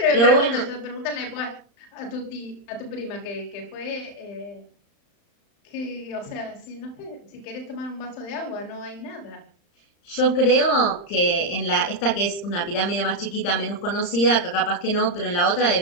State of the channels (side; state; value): right; late; 35 ms